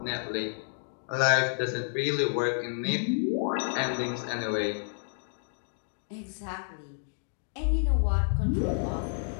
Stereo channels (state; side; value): silent; right; digital silence